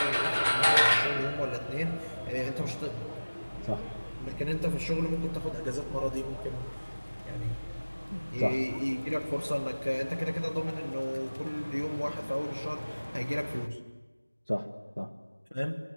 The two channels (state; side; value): inverted; both; correlation -1.00